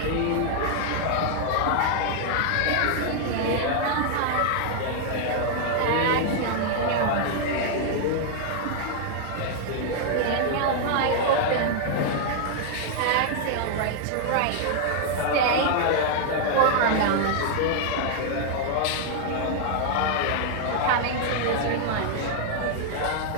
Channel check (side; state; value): both; different; correlation -0.01